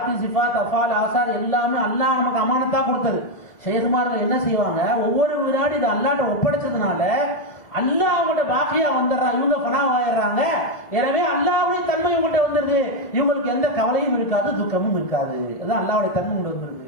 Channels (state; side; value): late; right; 1.6 ms